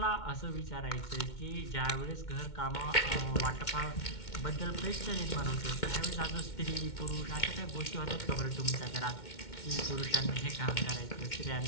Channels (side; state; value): right; late; 2.2 ms